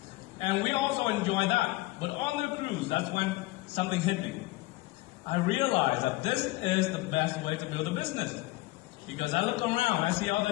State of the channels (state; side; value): quieter; right; 20.2 dB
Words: And we also enjoyed that. But on the cruise, that's when something hit me. I realized that this is the best way to build a business. Because I look around, I see